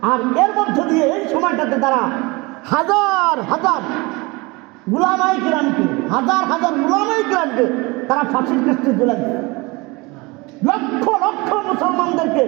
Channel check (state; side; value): quieter; left; 24.9 dB